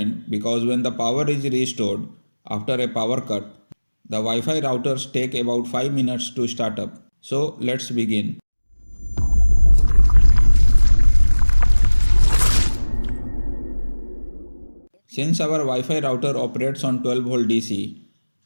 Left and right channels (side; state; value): both; inverted; correlation -1.00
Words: because when the power is restored after a power cut, the Wi-Fi routers take about 5 minutes to start up. So let's begin. Since our Wi-Fi router operates on 12 volt DC,